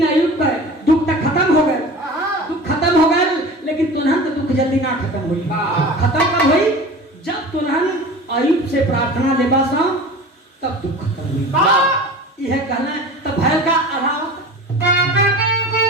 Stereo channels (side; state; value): both; normal; correlation 0.37